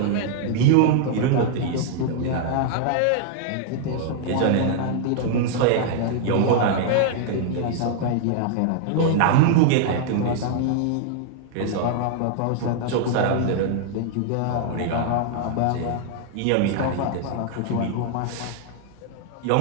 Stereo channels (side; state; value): both; different; correlation 0.00